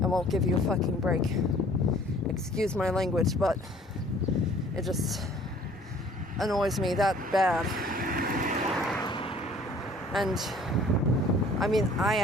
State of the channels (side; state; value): both; normal; correlation 0.54